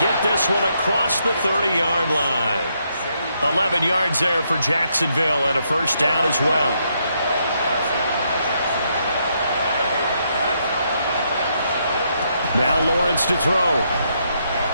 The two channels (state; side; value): inverted; both; correlation -0.76